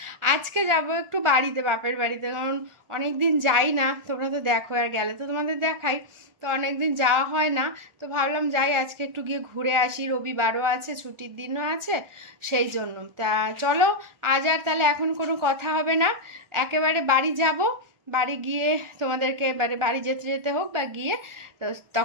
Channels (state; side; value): late; left; 1.4 ms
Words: আজকে যাব একটু বাড়িতে, বাপের বাড়িতে, কারণ অনেক দিন যাই না। তোমরা তো দেখো, আর গেলে তো তোমাদের দেখাই, তো অনেক দিন যাওয়া হয় না। তো ভাবলাম যাই, আজকে একটু গিয়ে ঘুরে আসি, রবিবারও আছে, ছুটির দিনও আছে, সেই জন্য। তা চলো, আজ আর তাহলে এখন কোনো কথা হবে না, একেবারে বাড়ি যাব। বাড়ি গিয়ে তোমাদেরকে এবারে বাড়ি যেতে যেতে হোক বা গিয়ে, তো